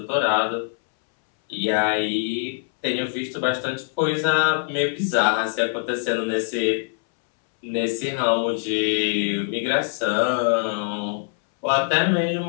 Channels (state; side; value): silent; right; 63 dB below the other